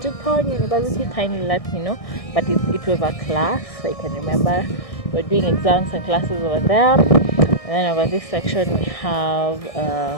University, kindly let me know. But it was a class. I can remember. We're doing exams and classes over there. And then over this section we have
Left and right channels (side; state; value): right; late; 1.6 ms